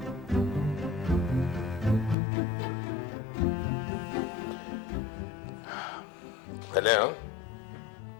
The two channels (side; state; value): right; drops out; at 2.1 s